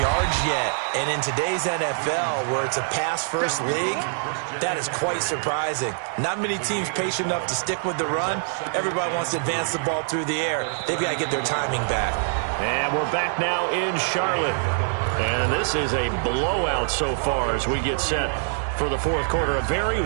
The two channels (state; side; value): silent; left; digital silence